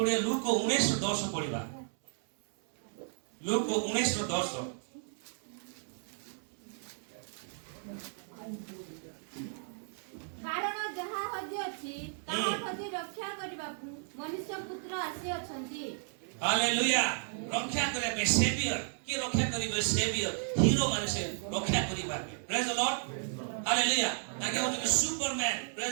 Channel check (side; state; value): left; silent; 55 dB below the other